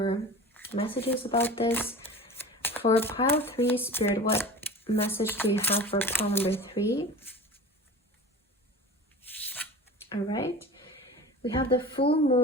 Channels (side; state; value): both; normal; correlation 0.36